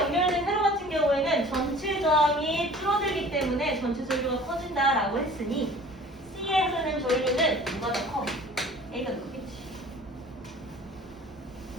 세로 같은 경우에는 전체 저항이 줄어들기 때문에 전체 전류가 커진다라고 했으니 C에 흐르는 전류는 누가 더 커? A가 더 크겠지.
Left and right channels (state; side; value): normal; both; correlation 0.47